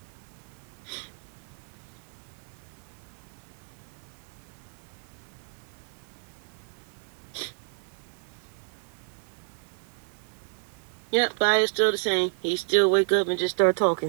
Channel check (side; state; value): left; silent; digital silence